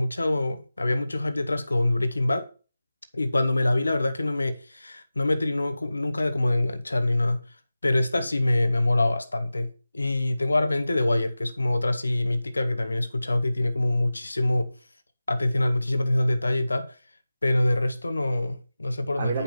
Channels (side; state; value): both; inverted; correlation -0.96